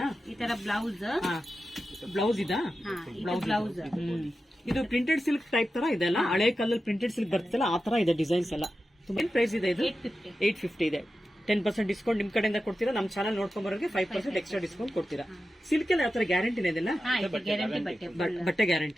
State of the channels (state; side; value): normal; both; correlation 0.92